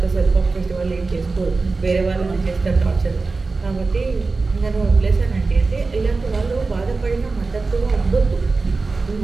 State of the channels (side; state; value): left; quieter; 3.9 dB